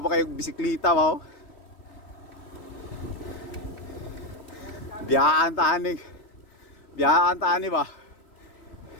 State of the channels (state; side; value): late; right; 3.1 ms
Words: pa kayo bisikleta ba? Oh? Biyaan taani ba?